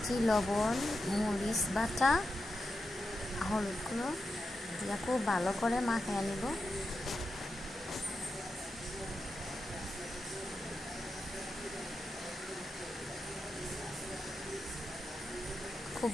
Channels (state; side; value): normal; both; correlation 0.88